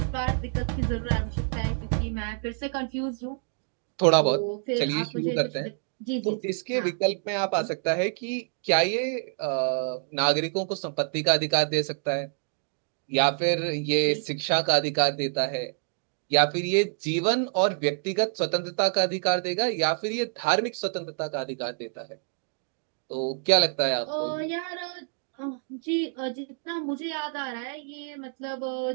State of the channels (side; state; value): left; silent; 60 dB below the other